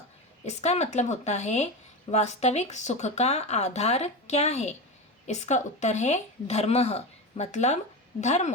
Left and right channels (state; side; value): normal; both; correlation 0.21